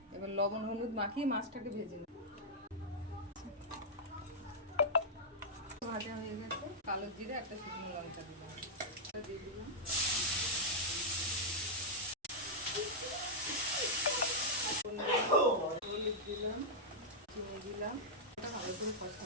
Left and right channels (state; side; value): normal; both; correlation -0.07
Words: এবার লবণ হলুদ মাখিয়ে মাছটাকে ভেজে নেব। ভাজা হয়ে গেছে, কালো জিরে একটা শুকনো লঙ্কা দিলাম, দিয়ে দিলাম হলুদ দিলাম, চিনি দিলাম, ভালো করে